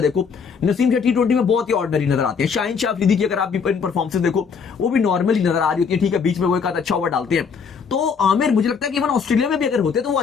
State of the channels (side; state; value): right; quieter; 6.0 dB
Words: देखो, नसीम शाह T20 में बहुत ही ऑर्डिनरी नजर आते हैं। शाहीन शाह अफरीदी की अगर आप इन परफॉर्मेंस देखो, वो भी नॉर्मली नजर आ रही होती है, ठीक है, बीच में वो एक आध अच्छा ओवर डालते हैं। तो आमिर मुझे लगता है कि इवन ऑस्ट्रेलिया में भी अगर होते तो वो